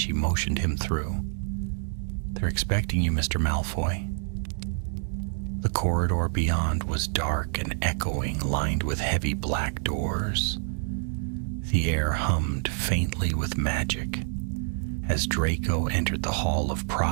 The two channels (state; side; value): silent; left; digital silence